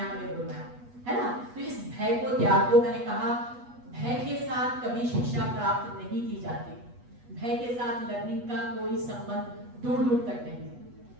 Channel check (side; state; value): left; late; 8.2 ms